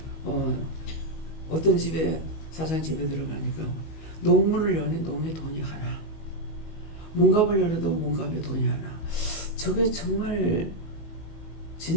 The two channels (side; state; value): right; late; 19 ms